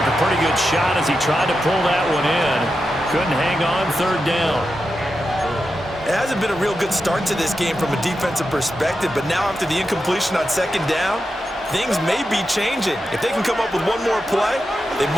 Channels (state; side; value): normal; both; correlation 0.89